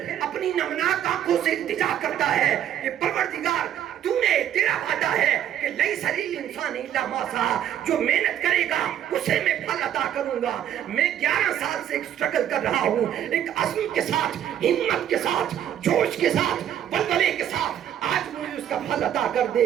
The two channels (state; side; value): quieter; left; 10.5 dB